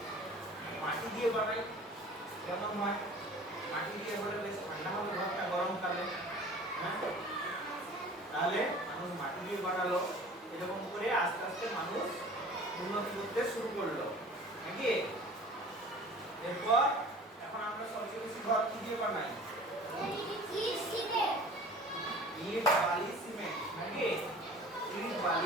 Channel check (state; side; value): normal; both; correlation 0.44